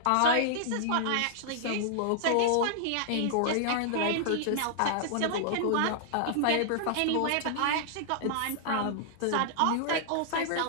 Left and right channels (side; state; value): both; different; correlation -0.01